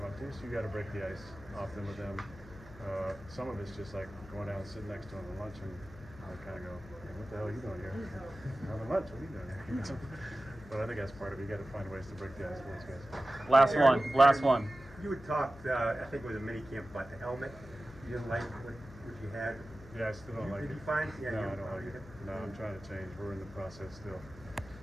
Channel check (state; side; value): noise; left; hum, 18 dB below the sound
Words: up to you, so you got to break the ice often with them. Some of it's just like going down and sitting next to them at lunch, and I kind of go, "What the hell are you doing here? Having lunch? What are you doing here?" But I think that's part of it. You got to find ways to break the ice with those guys. Last one. You had talked, I think it was a mini camp, about the helmet. You didn't like what you had. Yeah, I still don't like it. Did you find? No, I don't like it. No, I'm trying to change. We're in the process still.